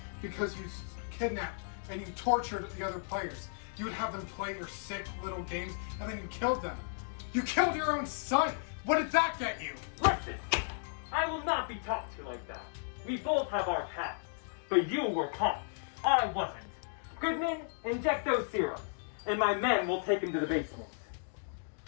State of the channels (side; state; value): right; silent; digital silence